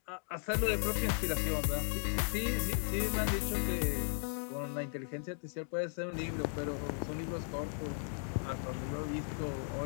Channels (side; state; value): right; silent; 54 dB below the other